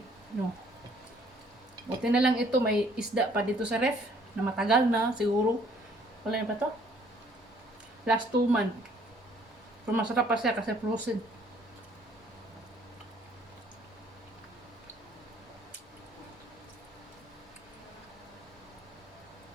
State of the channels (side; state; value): both; normal; correlation 0.61